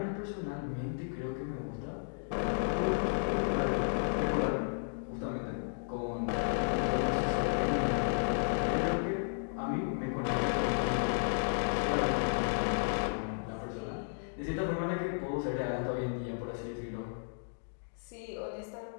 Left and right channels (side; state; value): right; silent; digital silence